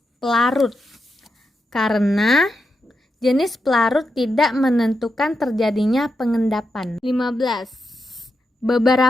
pelarut. Karena jenis pelarut tidak menentukan terjadinya pengendapan. 15.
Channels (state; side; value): normal; both; correlation 0.86